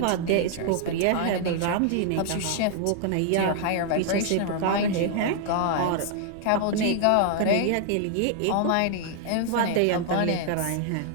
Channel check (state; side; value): different; both; correlation 0.00